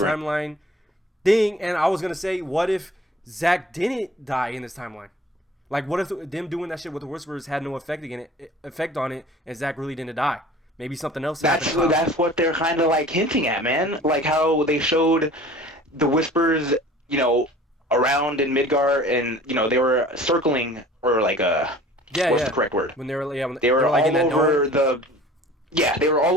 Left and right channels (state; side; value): normal; both; correlation 0.46